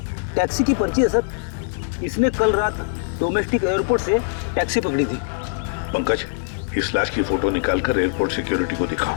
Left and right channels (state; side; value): silent; right; digital silence